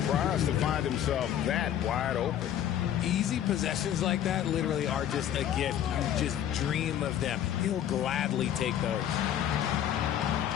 to find himself that wide open. Easy possessions like that literally are just a gift. You just dream of them. He'll gladly take those.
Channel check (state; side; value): quieter; right; 10.6 dB